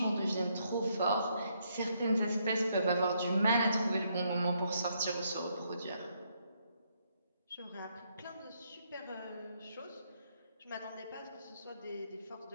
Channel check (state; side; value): inverted; both; correlation -0.74